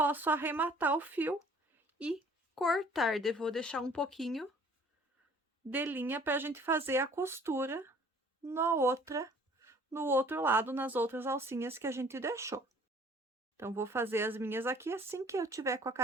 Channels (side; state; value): both; normal; correlation 0.54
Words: arrematar o fio e cortar, vou deixar um pouquinho de linha para a gente fazer a costura no outro lado, nas outras alcinhas que a gente deixou. Então, vou fazer as minhas aqui, assim que eu tiver com a